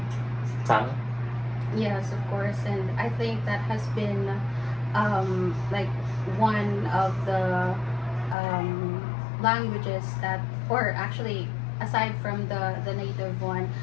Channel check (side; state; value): right; drops out; at 8.3 s